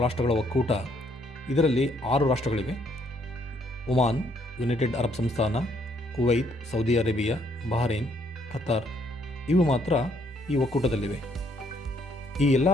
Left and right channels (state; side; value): normal; both; correlation 0.68